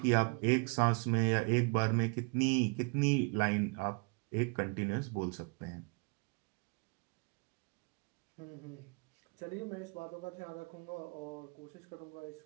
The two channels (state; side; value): quieter; left; 33.5 dB